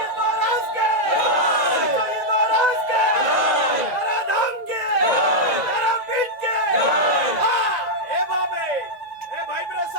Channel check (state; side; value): late; left; 1.9 ms